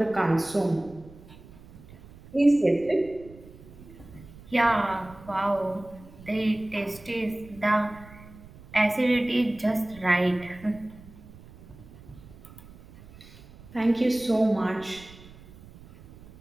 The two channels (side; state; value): right; noise; rumble, 20 dB below the sound